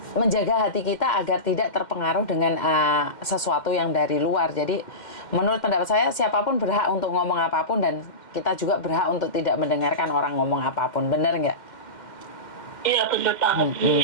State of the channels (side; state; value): right; late; 2.1 ms